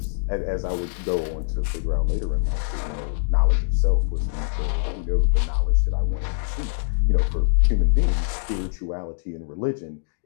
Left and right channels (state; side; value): silent; right; digital silence